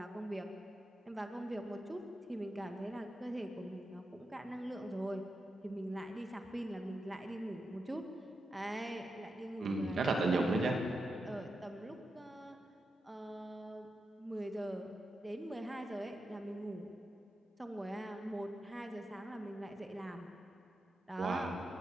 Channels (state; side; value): normal; both; correlation 0.87